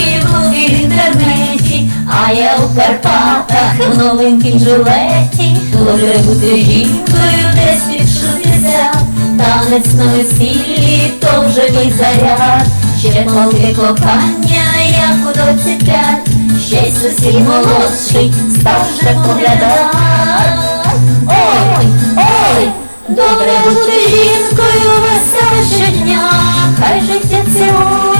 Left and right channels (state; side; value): inverted; both; correlation -1.00